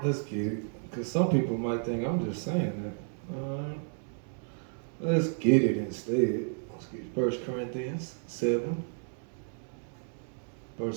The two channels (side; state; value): left; silent; 56 dB below the other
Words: Let's get it. Because some people might think I'm just saying that. Let's get it instead. Let's get 1 Corinthians 7,